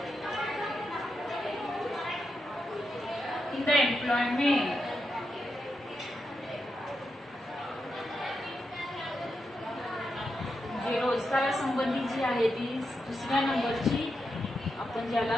In the employment. जे रोजगारासंबंधी जी आहे ती दुसऱ्या नंबरची आपण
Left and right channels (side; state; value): both; normal; correlation 0.86